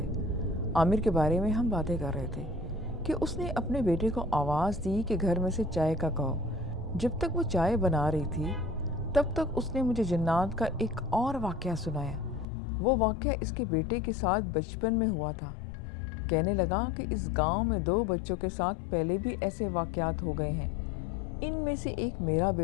عامر کے بارے میں ہم باتیں کر رہے تھے کہ اس نے اپنے بیٹے کو آواز دی کہ گھر میں سے چائے کا کہو۔ جب تک وہ چائے بنا رہی تھی تب تک اس نے مجھے جنات کا ایک اور واقعہ سنایا۔ وہ واقعہ اس کے بیٹے کے ساتھ بچپن میں ہوا تھا۔ کہنے لگا کہ اس گاؤں میں 2 بچوں کے ساتھ پہلے بھی ایسے واقعات ہو گئے ہیں۔ ان میں سے ایک میرا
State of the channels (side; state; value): right; drops out; at 12.5 s